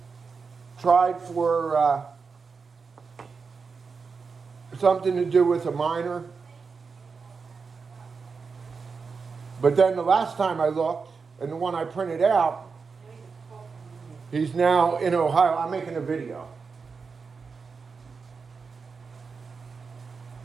tried for something to do with a minor. But then the last time I looked, and the one I printed out, he's now in Ohio. I'm making a video.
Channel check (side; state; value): left; quieter; 5.1 dB